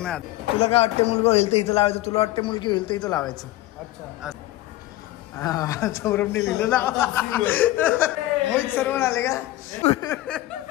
तुला काय वाटते मुलगा होईल तर इथं लावायचं, तुला वाटते मुलगी होईल तर इथं लावायचं. अच्छा. सौरभने लिहिलं ना. मोहित सर्वण आले का.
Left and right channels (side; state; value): right; quieter; 16.3 dB